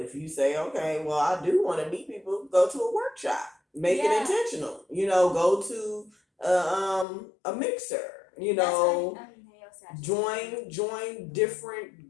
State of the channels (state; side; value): drops out; right; at 7.1 s